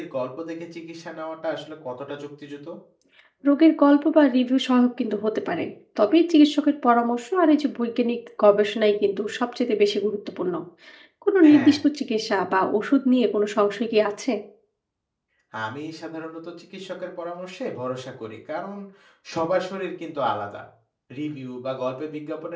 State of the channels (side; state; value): both; identical; correlation 1.00